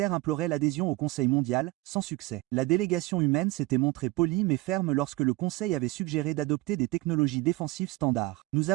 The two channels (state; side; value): quieter; left; 19.9 dB